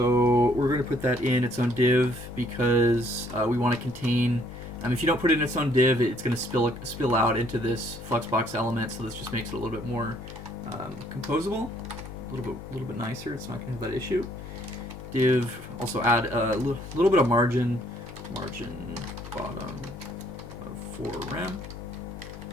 we're going to put that in its own div because we want to contain. If you don't put it in its own div, it's going to spill out into this Fluxbox element. So this just makes it a little bit more composable, a little bit nicer. It's not going to have that issue. Div, also add a little bit of margin bottom of 4 rem.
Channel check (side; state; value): both; normal; correlation 0.65